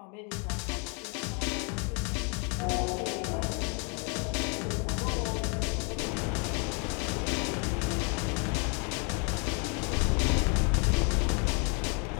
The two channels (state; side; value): quieter; right; 35.6 dB